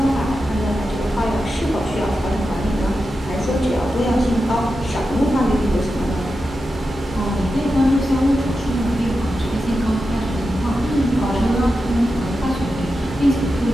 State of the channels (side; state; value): both; normal; correlation 0.90